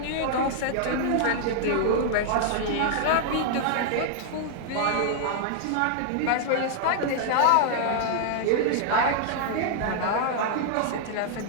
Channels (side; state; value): both; different; correlation -0.01